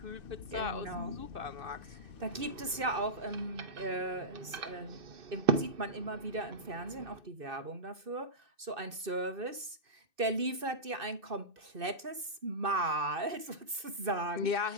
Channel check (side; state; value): left; late; 2.6 ms